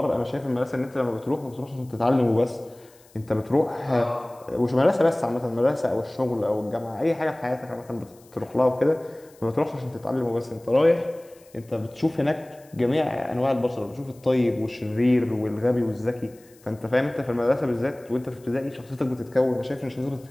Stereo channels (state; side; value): noise; left; hiss, 28 dB below the sound